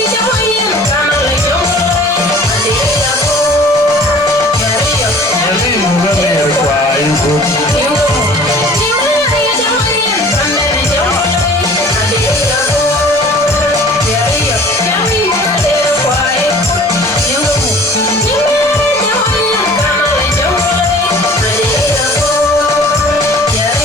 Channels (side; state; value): both; normal; correlation 0.48